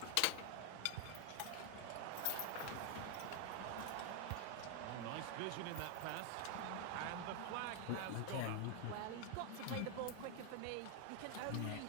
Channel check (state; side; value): different; both; correlation 0.00